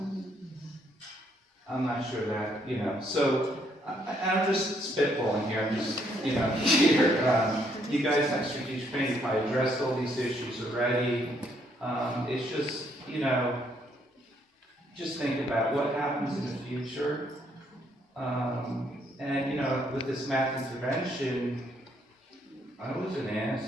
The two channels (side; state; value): both; normal; correlation 0.70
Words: I'm not sure that, so I'm just spitballing here. I'm just, here. You guys have strategic planning. You probably addressed all these issues already. It's just, just think about what happens in the future. And, with this math intervention, I wasn't